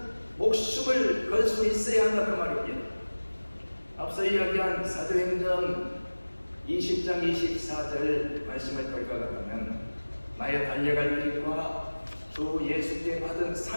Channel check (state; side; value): inverted; both; correlation -1.00